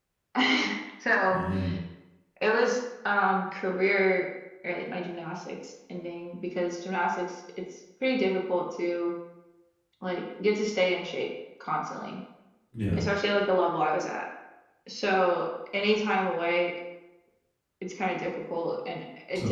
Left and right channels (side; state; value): both; identical; correlation 1.00